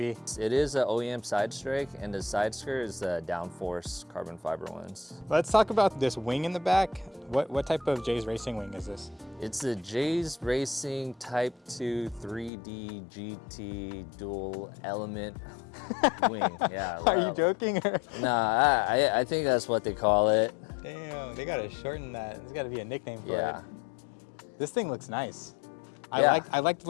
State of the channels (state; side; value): drops out; right; at 12.5 s